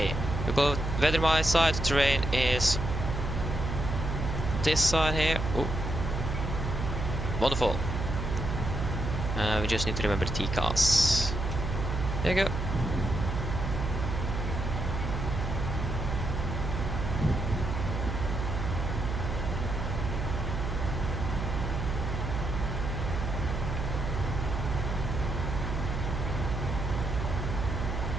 We go weather my side, terrain is this side here. Ooh. Wonderful. We just need to remember the TCAS. There you go.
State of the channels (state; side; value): noise; right; hum, 3 dB below the sound